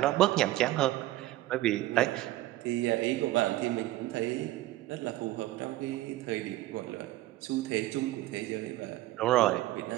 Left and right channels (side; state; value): left; quieter; 16.1 dB